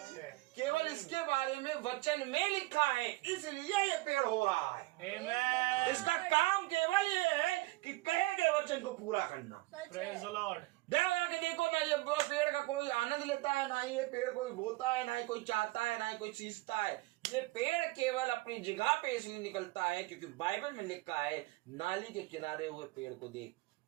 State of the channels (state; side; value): quieter; left; 20.9 dB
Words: केवल इसके बारे में वचन में लिखा है, इसलिए ये पेड़ हो रहा है। Amen। इसका काम केवल ये है कि कहे गए वचन को पूरा करना। Praise the Lord। के देखो ना, ये पेड़ का कोई आनंद लेता है ना ही ये पेड़ कोई बोता है, ना ही कोई चाहता है, ना ही कोई सींचता है। ये पेड़ केवल अपनी जगह पे इसलिए निकलता है क्योंकि बाइबल में लिखा है, नाली के किनारे हुए पेड़ को देख,